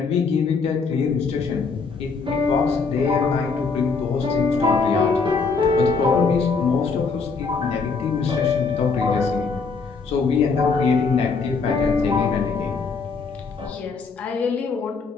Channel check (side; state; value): right; quieter; 4.8 dB